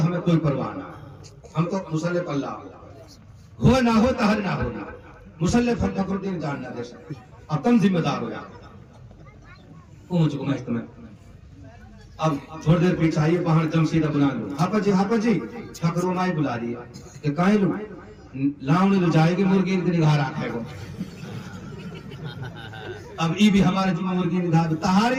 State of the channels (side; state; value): both; identical; correlation 1.00